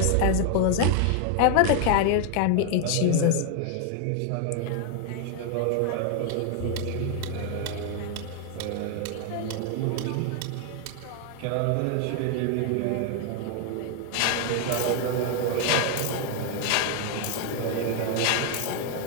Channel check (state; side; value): different; both; correlation 0.00